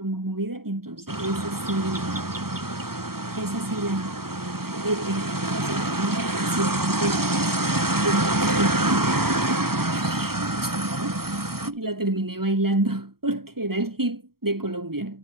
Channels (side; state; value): left; late; 0.94 ms